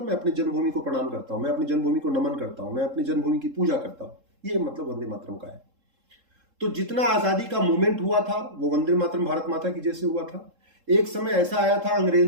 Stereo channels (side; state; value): left; late; 3.7 ms